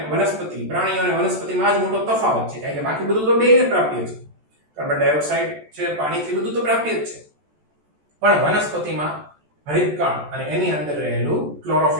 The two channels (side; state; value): left; late; 14 ms